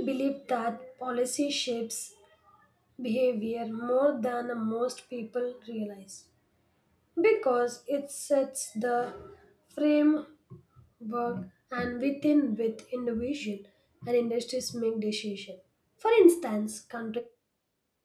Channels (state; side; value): identical; both; correlation 1.00